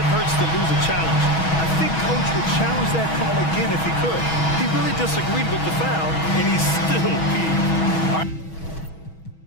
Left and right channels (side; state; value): right; late; 6.2 ms